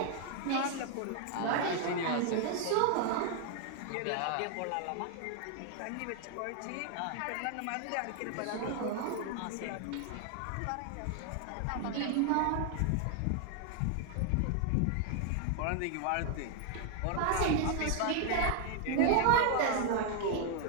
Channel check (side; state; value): both; different; correlation 0.00